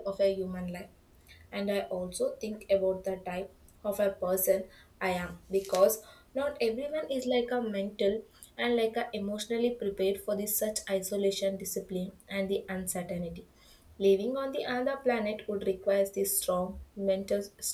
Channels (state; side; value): identical; both; correlation 1.00